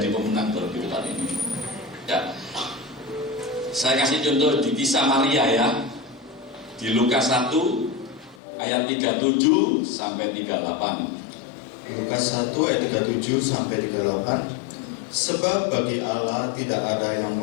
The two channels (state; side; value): drops out; right; at 8.3 s